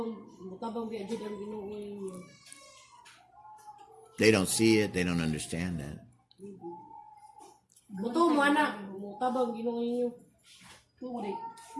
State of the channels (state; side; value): identical; both; correlation 1.00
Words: biadjud ang Ginoo ninyo. They don't see it. They don't understand that. Buto mo anak, mutabang Ginoo ninyo. Tumo di.